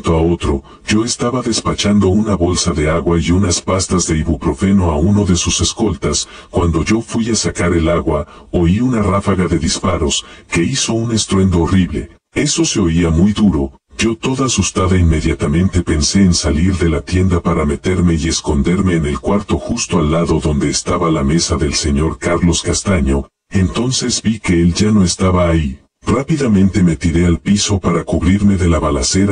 a otro, yo estaba despachando una bolsa de agua y unas pastas de ibuprofeno a uno de sus escoltas. Cuando yo fui a sacar el agua, oí una ráfaga de disparos, que hizo un estruendo horrible. Eso se oía muy duro. Yo toda asustada inmediatamente pensé en salir de la tienda para meterme y esconderme en el cuarto justo al lado donde estaba la mesa del señor Carlos Castaño. Entonces vi que él ya no estaba ahí. Rápidamente me tiré al piso para cubrirme de la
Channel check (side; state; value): both; identical; correlation 1.00